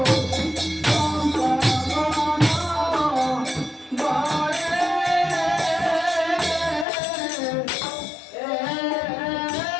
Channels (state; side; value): drops out; right; at 6.9 s